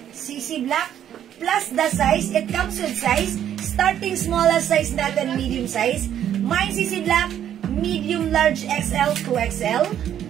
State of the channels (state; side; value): quieter; left; 10.3 dB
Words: CC Black plus the size. It comes with size. Starting smallest size natin, medium size. Mine CC Black, medium large XL to XL.